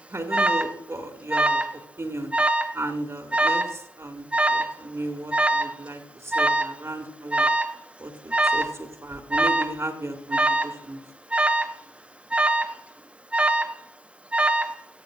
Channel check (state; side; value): normal; both; correlation 0.81